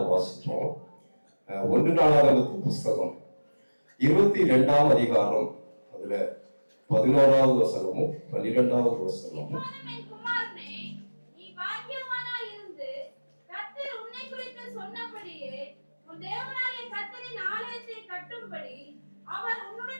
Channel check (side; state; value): both; inverted; correlation -1.00